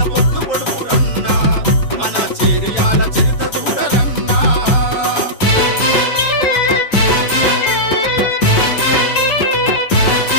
పొద్దు పొడుపు రన్నా మన చేర్యాల చరిత చూడరన్నా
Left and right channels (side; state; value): right; late; 7.1 ms